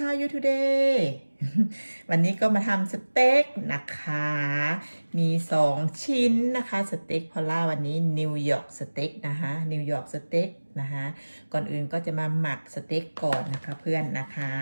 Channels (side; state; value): both; inverted; correlation -1.00